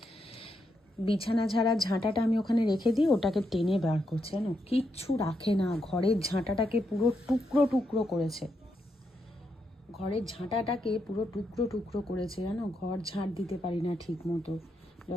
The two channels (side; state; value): both; normal; correlation 0.81